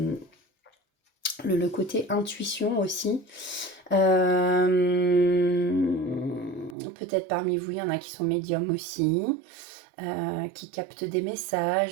le côté intuition aussi. Peut-être parmi vous, il y en a qui sont médiums aussi. Qui captent des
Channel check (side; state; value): left; drops out; at 6.8 s